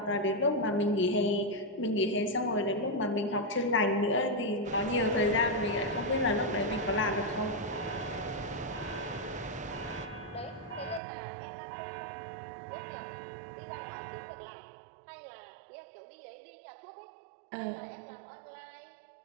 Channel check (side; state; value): left; drops out; at 11.0 s